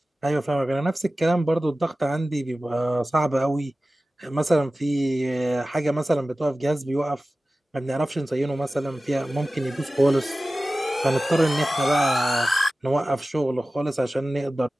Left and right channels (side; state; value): both; normal; correlation 0.96